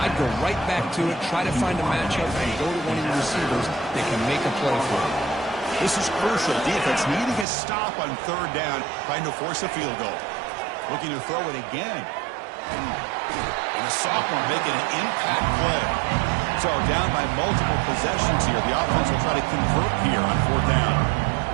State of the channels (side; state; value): left; drops out; at 7.5 s